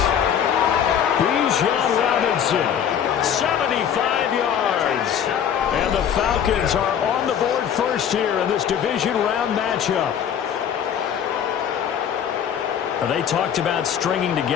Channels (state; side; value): quieter; right; 8.7 dB